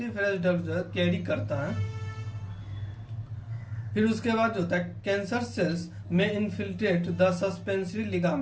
डक्ट जो है कैरी करता है। फिर उसके बाद जो होता है कैंसर सेल्स में infiltrate the suspensory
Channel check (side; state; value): both; identical; correlation 1.00